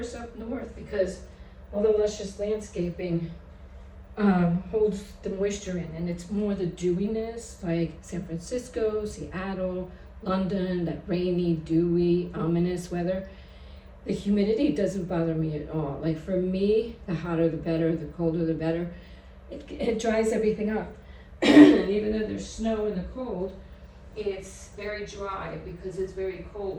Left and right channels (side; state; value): both; identical; correlation 1.00